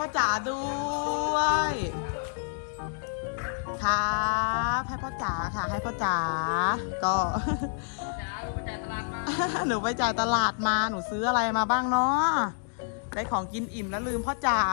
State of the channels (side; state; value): right; silent; digital silence